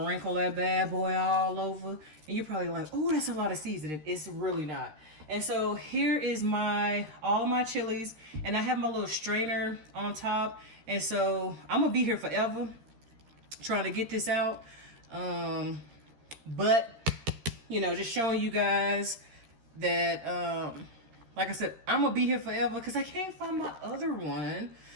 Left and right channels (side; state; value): left; late; 13 ms